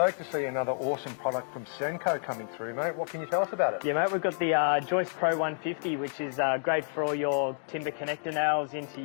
to see another awesome product from Senco coming through, mate. What can you tell us about it? Yeah, mate, we've got the Joist Pro 150, which is great for all your timber connector nails into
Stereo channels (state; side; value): silent; right; digital silence